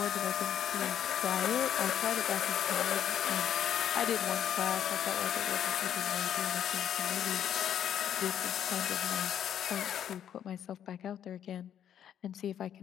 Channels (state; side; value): quieter; right; 9.8 dB